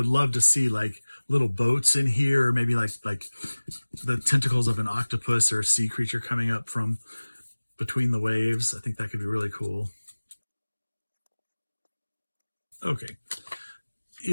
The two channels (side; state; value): both; inverted; correlation -1.00